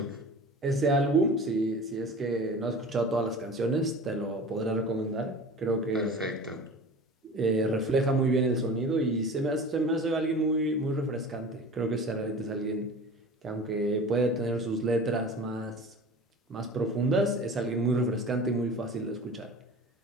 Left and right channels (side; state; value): both; normal; correlation 0.38